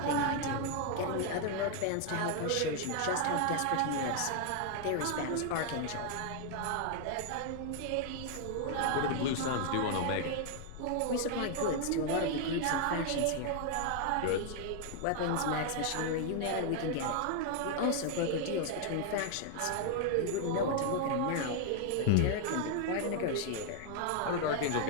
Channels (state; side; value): different; both; correlation 0.00